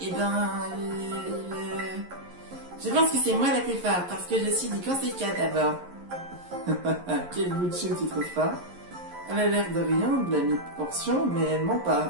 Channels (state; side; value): late; left; 11 ms